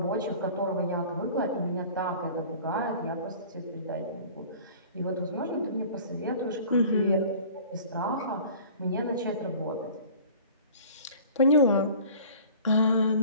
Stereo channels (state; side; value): inverted; both; correlation -0.46